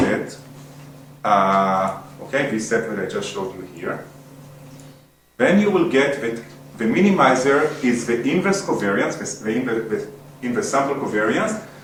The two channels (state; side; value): identical; both; correlation 1.00